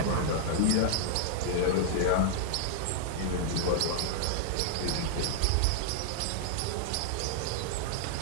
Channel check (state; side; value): different; both; correlation -0.01